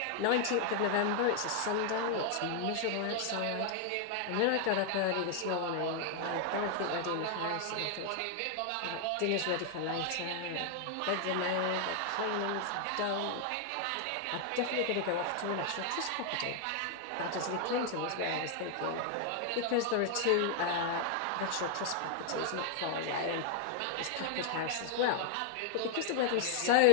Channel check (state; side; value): different; both; correlation 0.00